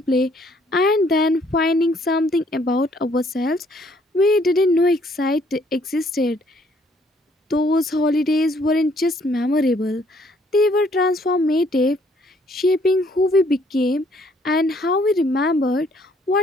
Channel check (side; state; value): both; normal; correlation 0.65